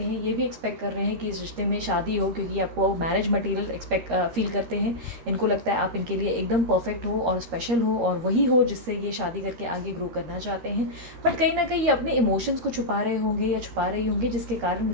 हैं, ये भी एक्सपेक्ट कर रहे हैं कि इस रिश्ते में शादी हो, क्योंकि आपको मैरिज मटेरियल फील करते हैं। इनको लगता है आप इनके लिए एकदम परफेक्ट हो और स्पेशल हो और वही हो जिससे ये शादी करके आगे ग्रो करना चाहते हैं। बट कहीं ना कहीं ये अपने इमोशंस को छुपा रहे होंगे या छुपा रही होंगी, जिसके कारण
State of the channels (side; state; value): left; late; 13 ms